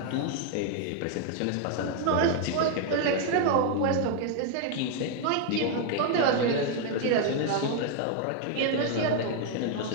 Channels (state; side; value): different; both; correlation 0.00